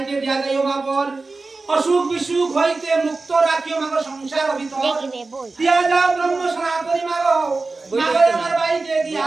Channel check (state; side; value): quieter; left; 3.6 dB